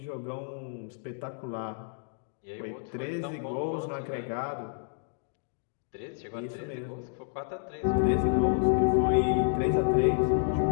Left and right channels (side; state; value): right; silent; digital silence